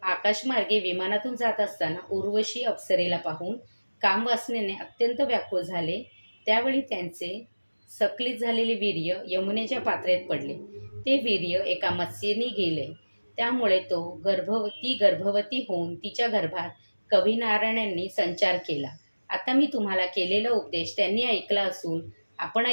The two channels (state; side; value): inverted; both; correlation -1.00